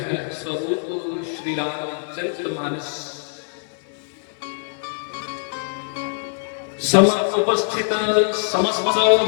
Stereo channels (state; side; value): silent; right; 58 dB below the other